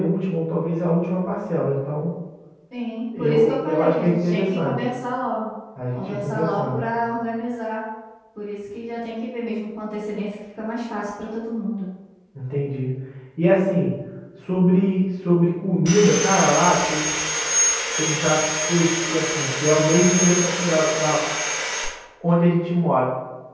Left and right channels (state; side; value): identical; both; correlation 1.00